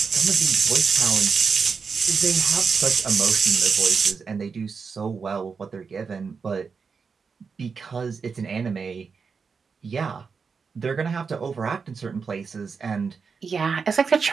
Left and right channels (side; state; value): left; quieter; 5.5 dB